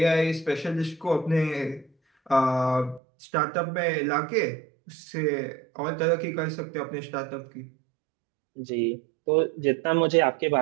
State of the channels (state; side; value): drops out; left; at 3.0 s